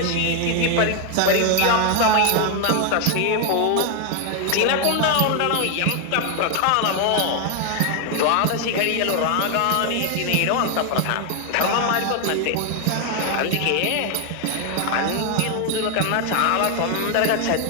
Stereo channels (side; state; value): both; different; correlation 0.01